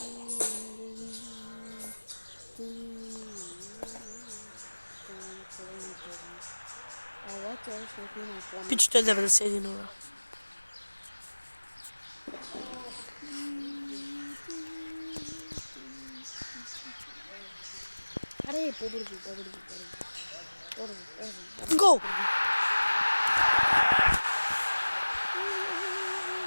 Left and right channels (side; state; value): both; inverted; correlation -1.00